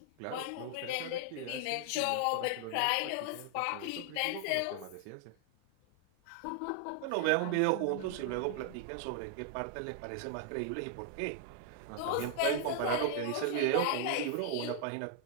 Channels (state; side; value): different; both; correlation 0.00